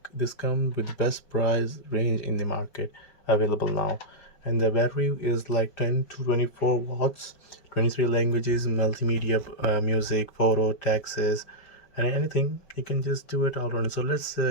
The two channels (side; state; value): right; late; 5.0 ms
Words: with the best price range in the market available now. And the battery is like 10 to 24 watts, 23 languages, multimedia, music, photo, taxes, and anything. You can just do it all around. So let's